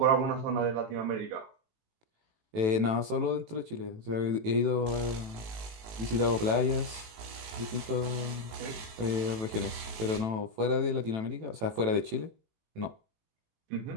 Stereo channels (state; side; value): late; left; 18 ms